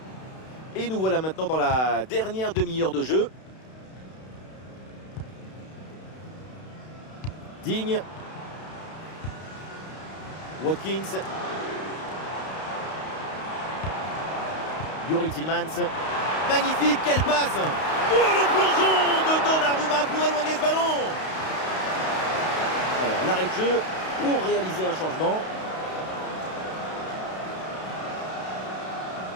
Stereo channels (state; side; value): late; right; 32 ms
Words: Et nous voilà maintenant dans la dernière demi-heure de jeu. Digne. Watkins. Youri Tillmans. Magnifique, quelle passe! Oh, le plongeon de Donnarumma pour éloigner ce ballon! Alors, l'arrêt de jeu pour réaliser un changement.